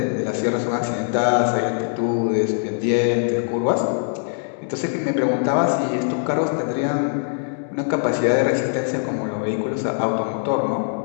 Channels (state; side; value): silent; right; digital silence